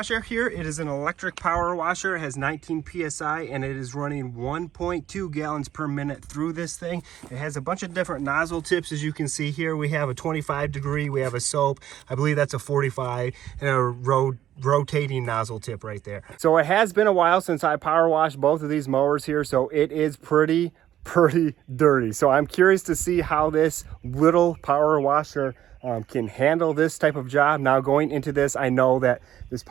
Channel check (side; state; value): left; quieter; 11.8 dB